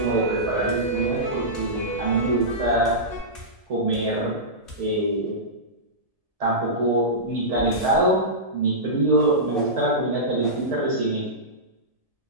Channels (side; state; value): left; late; 1.7 ms